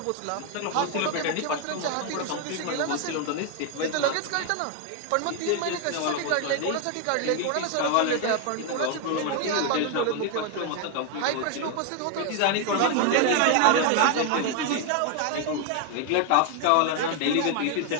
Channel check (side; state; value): both; different; correlation 0.01